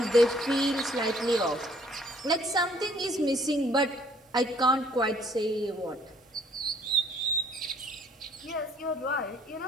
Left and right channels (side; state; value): both; normal; correlation 0.60